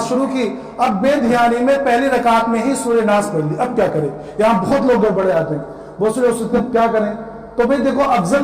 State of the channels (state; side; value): identical; both; correlation 1.00